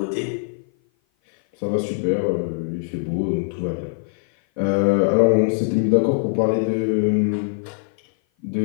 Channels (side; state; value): right; silent; 56 dB below the other